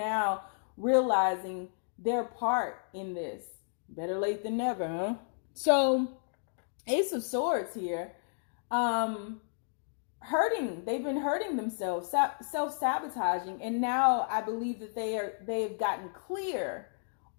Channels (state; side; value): silent; right; digital silence